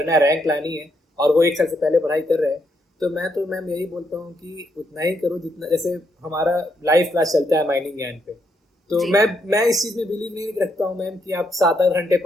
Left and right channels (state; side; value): normal; both; correlation 0.77